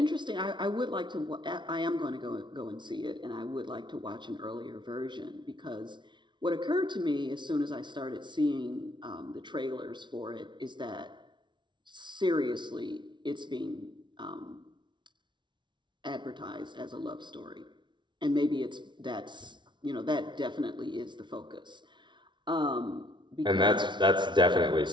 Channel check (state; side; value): late; left; 0.23 ms